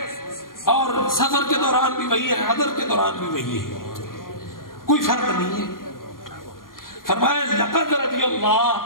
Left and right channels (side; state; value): right; late; 0.91 ms